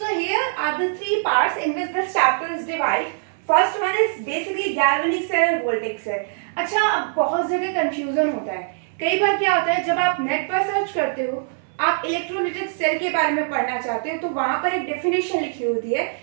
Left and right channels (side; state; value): left; silent; 64 dB below the other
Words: here are the 3 parts in which this chapter is divide. First one is basically galvanic cell और voltaic cell. अच्छा, अब बहुत जगह कंफ्यूजन होता है. कई बार क्या होता है, जब आप नेट पर सर्च करते हो, आप इलेक्ट्रोलाइटिक सेल के बारे में पढ़ना चाहते हो, तो वहां पर एक डेफिनेशन लिखी होती है,